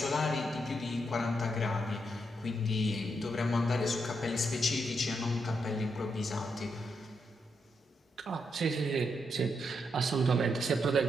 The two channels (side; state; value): both; normal; correlation 0.81